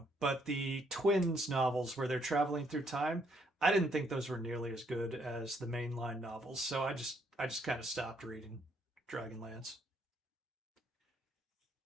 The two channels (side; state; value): both; normal; correlation 0.70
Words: but the twins novels where they're traveling through time, I didn't think those were nearly as good as the mainline novels, so I just kind of stopped reading Dragonlance.